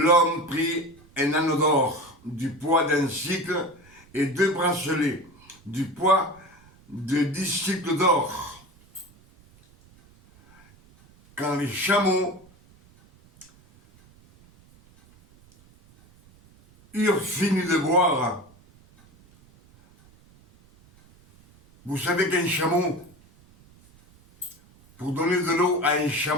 prit un anneau d'or du poids d'un cycle et 2 bracelets du poids de 10 cycles d'or. Quand les chameaux eurent fini de boire, vous savez qu'un chameau, pour donner de l'eau à un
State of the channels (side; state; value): right; noise; rumble, 28 dB below the sound